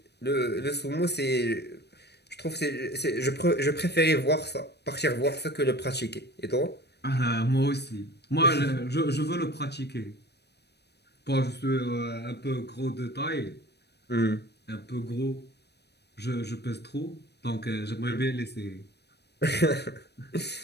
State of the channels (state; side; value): late; right; 0.48 ms